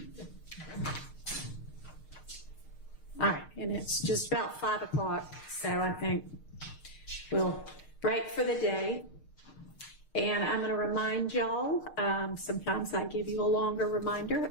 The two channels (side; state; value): right; late; 6.5 ms